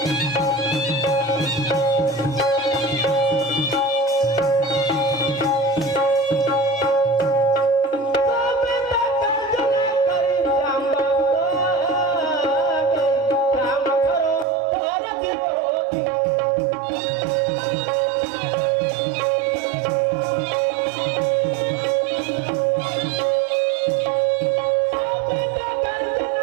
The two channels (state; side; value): drops out; left; at 14.5 s